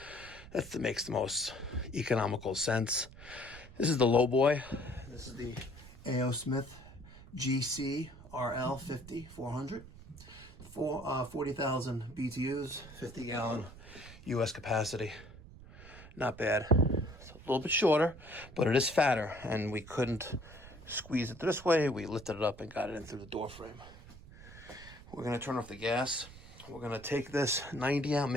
That makes the most economical sense. This is the low boy. This is the A.O. Smith GC RL 50-400. 40,000 BTUs, 50-gallon U.S. capacity. Not bad. It's a little bit shorter, but it is fatter, and we couldn't squeeze it this way. We lifted it up and got it in through the door frame. We're going to turn off the gas. We're going to take this 90 out,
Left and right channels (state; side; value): noise; right; rumble, 18 dB below the sound